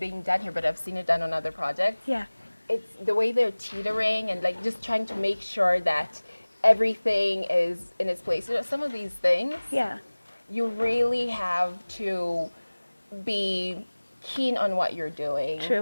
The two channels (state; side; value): inverted; both; correlation -1.00